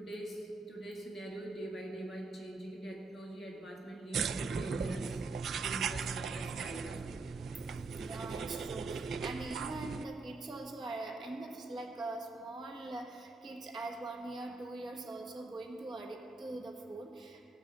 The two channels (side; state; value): left; quieter; 3.6 dB